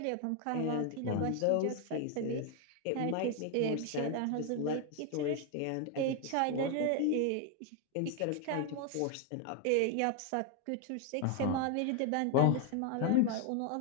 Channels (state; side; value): different; both; correlation 0.01